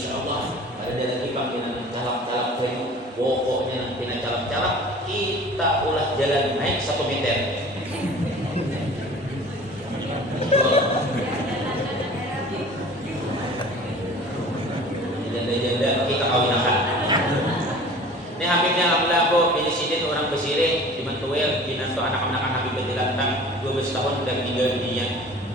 ada lagi panggilan calak-calak bayu pokoknya nanti calak-calak kita ulah jalan naik 1 meter. Janda-janda kita kawinakan. Ini Habibnya alhamdulillah aku pilih orang Besire di Mantuel binantu anak-anak Habib Bajilantang 12 tahun udah meninggal dunia.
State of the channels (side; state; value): both; normal; correlation 0.43